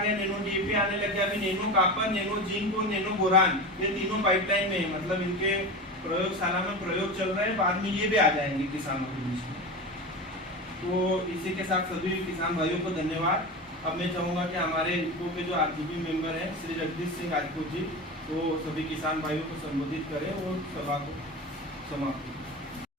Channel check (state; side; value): normal; both; correlation 0.26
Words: नैनो DAP आने लग गया, अभी नैनो कॉपर, नैनो जिंक और नैनो बोरान, ये तीनों पाइपलाइन में है। मतलब इनके प्रयोगशाला में प्रयोग चल रहे हैं, बाद में ये भी आ जाएंगे किसानों के बीच में। तो इसी के साथ सभी किसान भाइयों को धन्यवाद। अब मैं चाहूँगा कि हमारे इनको के जो RGB मेंबर हैं श्री जगदीश सिंह राजपूत जी, वो सभी किसान भाइयों को संबोधित करें और सभा को समाप्त करें।